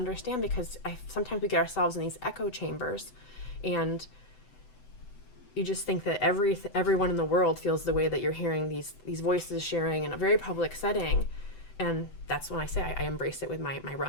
because sometimes we get ourselves in these echo chambers, and you just think that everyone in the world feels the way that you're hearing these voices sharing in a very public setting. And that's when I say I embrace it with my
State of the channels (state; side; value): late; right; 7.9 ms